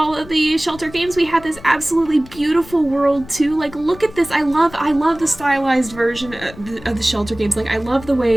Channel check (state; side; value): noise; left; rumble, 18 dB below the sound